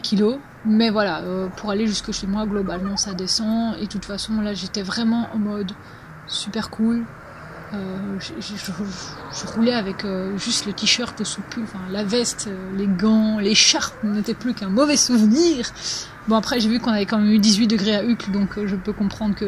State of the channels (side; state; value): both; identical; correlation 1.00